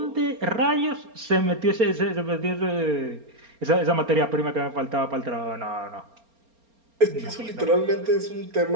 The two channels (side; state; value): left; late; 4.3 ms